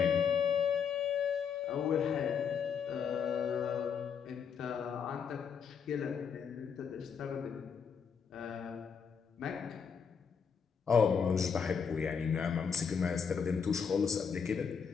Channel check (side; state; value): right; quieter; 6.7 dB